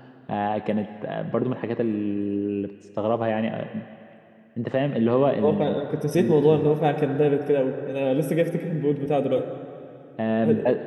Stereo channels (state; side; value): identical; both; correlation 1.00